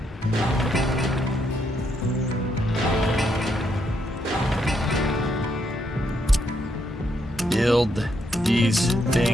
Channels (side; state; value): both; normal; correlation 0.77